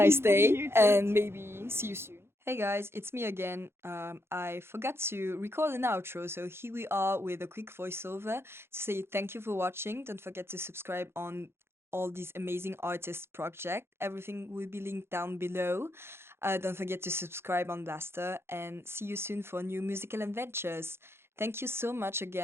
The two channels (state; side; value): late; left; 0.12 ms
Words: You day, too. and maybe see you soon. Hey guys, it's me again. I forgot to record an outro, so here we are with a quick voiceover to say thank you for watching. Don't forget to subscribe on all these amazing artists project. Everything will be linked down below. Don't forget to subscribe on Blaster, and see you soon for new musical adventures. Thank you so much